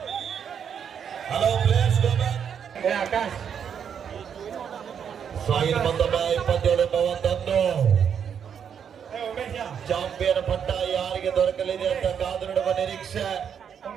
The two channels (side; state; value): left; quieter; 7.8 dB